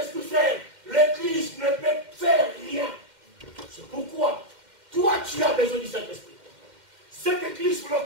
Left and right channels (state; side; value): late; left; 2.1 ms